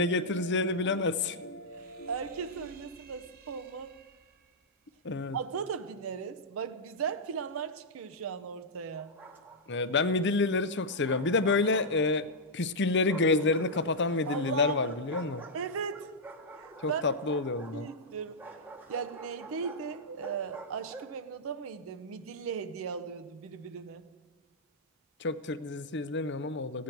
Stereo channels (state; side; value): normal; both; correlation -0.07